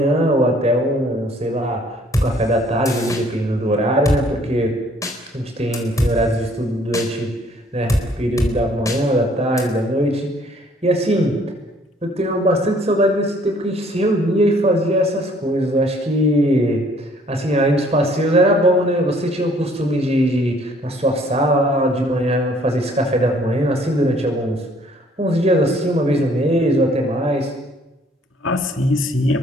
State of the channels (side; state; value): both; normal; correlation 0.60